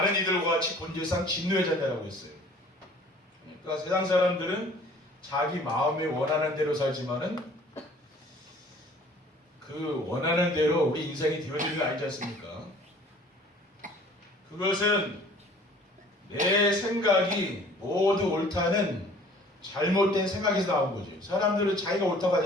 이들과 같이 본질상 진노의 자녀라고 했어요. 그러니까 세상 사람들은 자기 마음에 원하는 대로 살지만은 그 원하는 대로 우리 인생이 되어지는 게 아니지 않습니까? 그것은 내 생각이 모두 옳다는 잘못된 생각에서 나온 거죠. 사람들은 자기가 옳다고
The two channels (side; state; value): both; normal; correlation 0.51